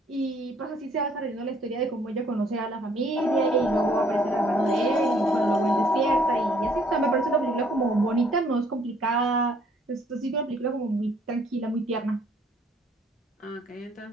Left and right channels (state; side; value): normal; both; correlation 0.63